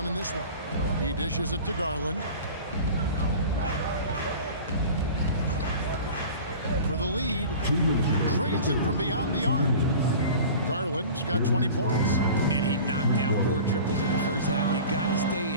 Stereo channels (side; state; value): both; inverted; correlation -0.39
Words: in this one. He dishes it to Garland. For the lead, trains it from beyond the arc. Garland's got 20 points. And he knocked down 4 triples in the first half. You got to stay